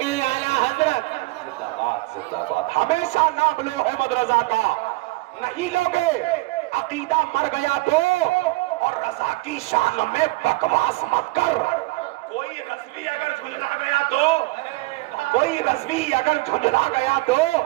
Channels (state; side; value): quieter; left; 22.4 dB